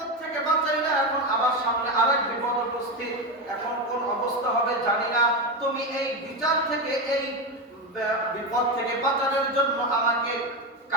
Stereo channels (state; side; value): normal; both; correlation 0.15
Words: থেকে বাঁচাইলা, এখন আবার সামনে আরেক বিপদ উপস্থিত, এখন কোন অবস্থা হবে জানি না, তুমি এই বিচার থেকে, এই বিপদ থেকে বাঁচানোর জন্য আমাকে